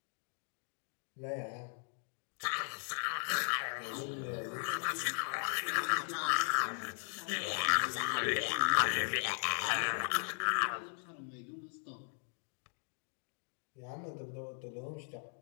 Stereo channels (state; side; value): silent; right; 52 dB below the other